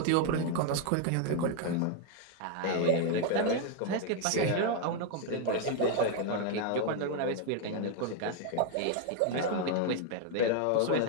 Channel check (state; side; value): different; both; correlation 0.01